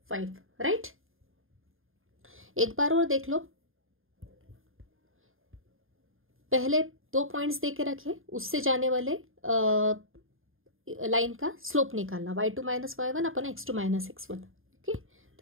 राइट। एक बार और देख लो, पहले 2 पॉइंट्स दे के रखे, उससे जाने वाले लाइन का स्लोप निकालना, y2 माइनस y1 अपन x2 माइनस x1। ओके,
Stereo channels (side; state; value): left; late; 0.60 ms